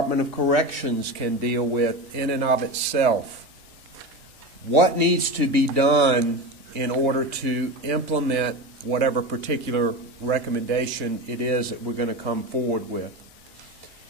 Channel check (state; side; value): late; left; 2.6 ms